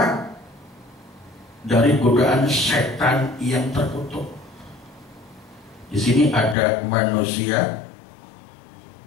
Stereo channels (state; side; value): drops out; right; at 6.6 s